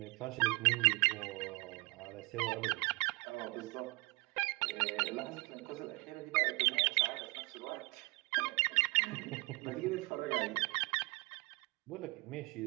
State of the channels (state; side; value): quieter; left; 25.6 dB